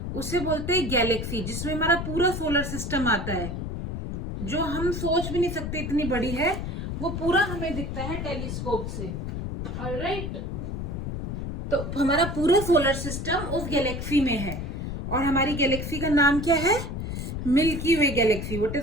उसे बोलते हैं गैलेक्सी, जिसमें हमारा पूरा सोलर सिस्टम आता है, जो हम सोच भी नहीं सकते इतनी बड़ी है. वो पूरा हमें दिखता है टेलीस्कोप से. ऑलराइट, तो हमारा पूरा सोलर सिस्टम उस गैलेक्सी में है. और हमारी गैलेक्सी का नाम क्या है? Milky Way galaxy. What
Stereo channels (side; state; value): left; noise; rumble, 4 dB below the sound